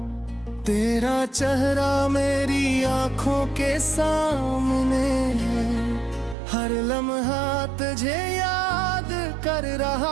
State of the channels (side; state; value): left; drops out; at 6.4 s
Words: तेरा चेहरा मेरी आंखों के सामने है, हर लम्हा तुझे याद कर